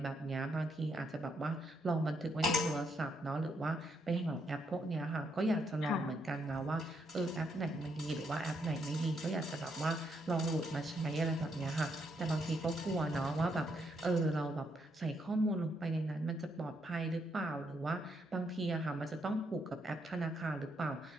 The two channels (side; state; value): both; normal; correlation 0.76